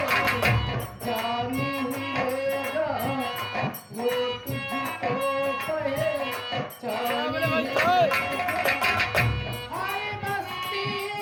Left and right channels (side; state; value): both; identical; correlation 1.00